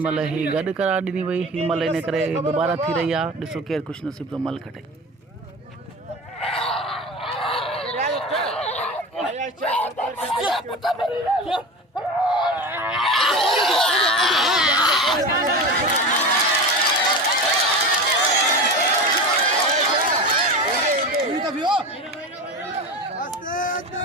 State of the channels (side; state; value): both; normal; correlation 0.28